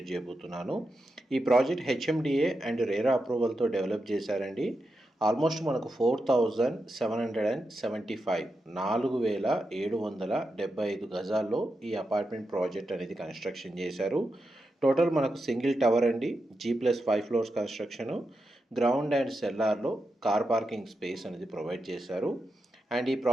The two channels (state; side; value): normal; both; correlation 0.88